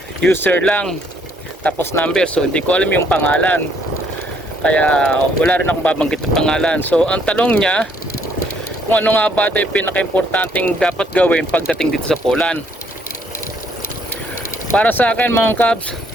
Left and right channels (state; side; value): normal; both; correlation 0.67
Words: user lang tapos number, so hindi ko alam yung pangalan kaya wala rin akong babanggit ng pangalan. So ang tanong niya kung ano nga ba ito yung pinaka-importanting dapat gawin pagdating dito sa Poland. Para sa akin mga kabs,